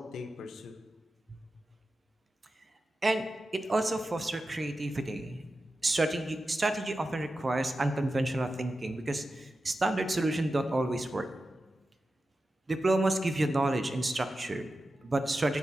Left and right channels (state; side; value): normal; both; correlation 0.92